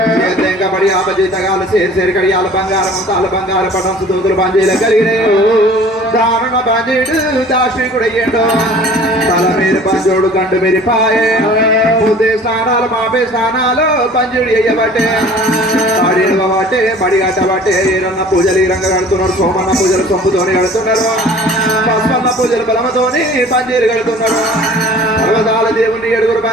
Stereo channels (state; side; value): normal; both; correlation 0.48